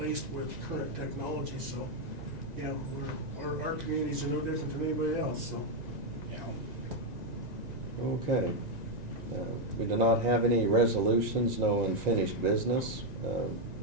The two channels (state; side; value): late; left; 1.9 ms